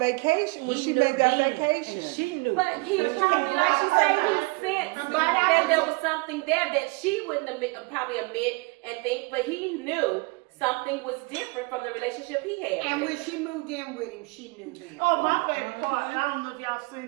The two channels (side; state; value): left; quieter; 27.1 dB